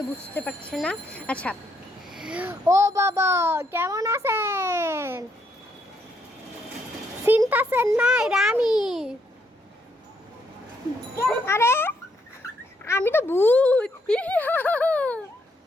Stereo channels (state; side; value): normal; both; correlation 0.74